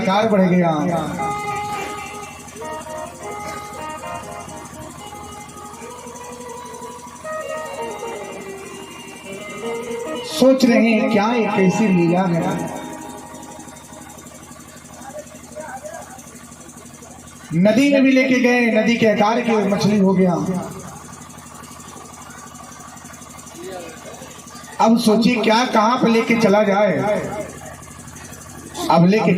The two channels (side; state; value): both; identical; correlation 1.00